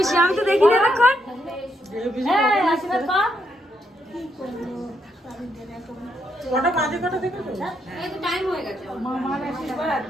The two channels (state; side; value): normal; both; correlation 0.78